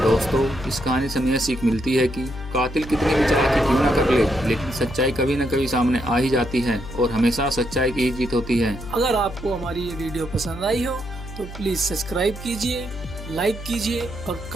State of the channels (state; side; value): noise; left; hum, 12 dB below the sound